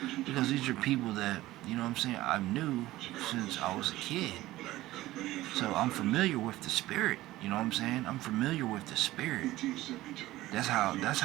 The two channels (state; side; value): quieter; left; 16.7 dB